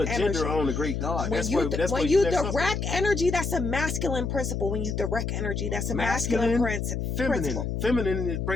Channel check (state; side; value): noise; left; hum, 2 dB below the sound